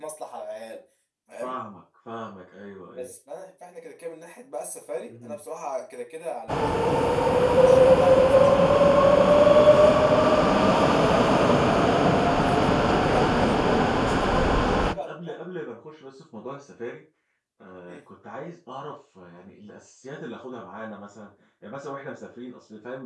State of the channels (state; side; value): identical; both; correlation 1.00